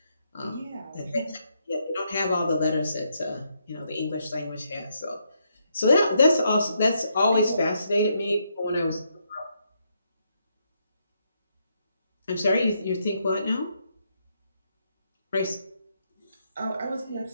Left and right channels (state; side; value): inverted; both; correlation -0.77